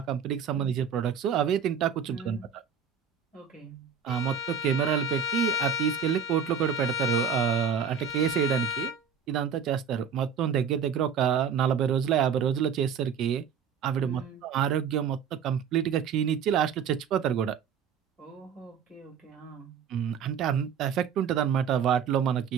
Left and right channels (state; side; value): quieter; left; 7.0 dB